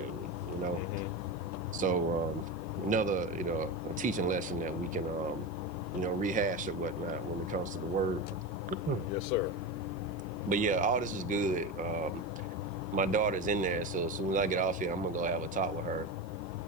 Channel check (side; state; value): right; noise; hiss, 29 dB below the sound